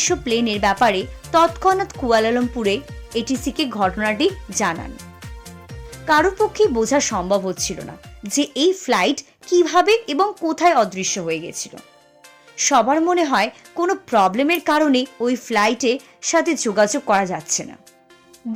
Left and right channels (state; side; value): identical; both; correlation 1.00